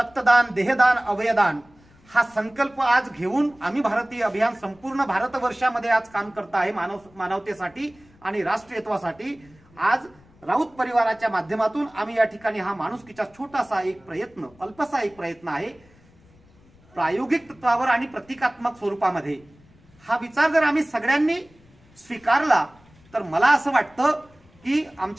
देहदान, अवयदान हा संकल्प आज घेऊन आम्ही भारतीय अभियान संपूर्ण भारतवर्षामध्ये आज काम करत आहे मानवतेसाठी आणि राष्ट्रीयत्वासाठी। आज राऊत परिवाराच्या माध्यमातून आम्ही या ठिकाणी हा माणुसकीचा छोटासा एक प्रयत्न, अल्पसा एक प्रयत्न आहे, प्रायोगिक तत्वावर आणि प्रतिकात्मक स्वरूपामध्ये हा विचार जर आम्ही सगळ्यांनी स्वीकारला तर मला असं वाटतं की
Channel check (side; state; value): left; noise; rumble, 29 dB below the sound